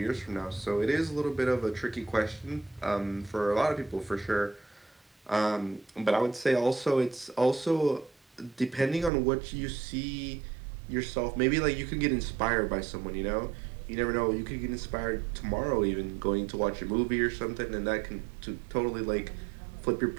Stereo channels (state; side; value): drops out; left; at 9.1 s